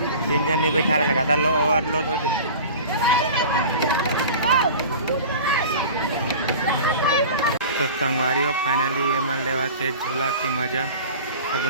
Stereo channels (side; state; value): both; inverted; correlation -0.38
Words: तीन जन नहीं बैठा रहेगा था ओवरलोड होते। तो संगवारी हो फाइनली ये मन लेवा से झूला की मजा सब